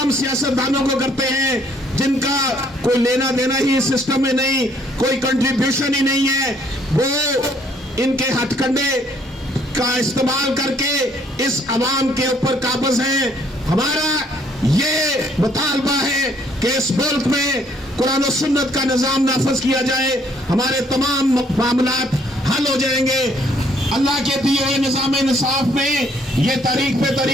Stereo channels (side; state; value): both; normal; correlation 0.65